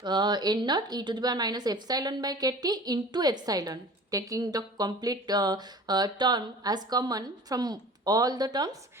n naught e to the power minus epsilon by kt into epsilon, taking the complete term as common from all the terms,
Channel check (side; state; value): both; normal; correlation 0.42